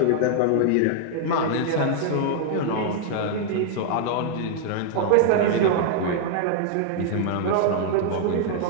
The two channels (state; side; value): different; both; correlation 0.00